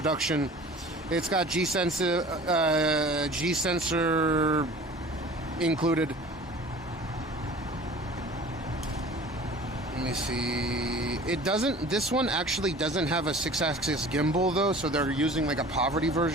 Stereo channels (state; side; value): normal; both; correlation 0.44